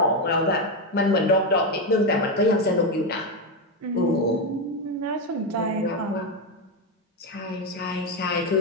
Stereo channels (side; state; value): both; normal; correlation 0.09